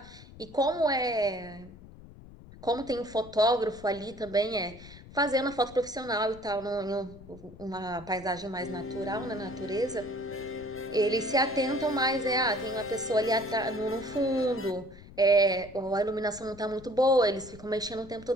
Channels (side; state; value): left; noise; rumble, 19 dB below the sound